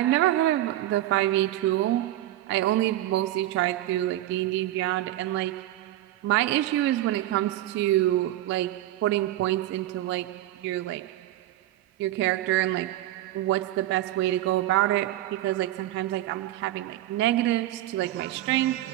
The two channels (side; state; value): left; quieter; 14.6 dB